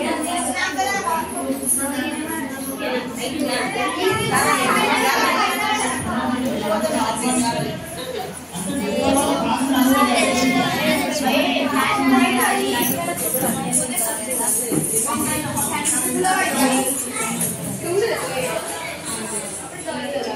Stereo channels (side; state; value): both; identical; correlation 1.00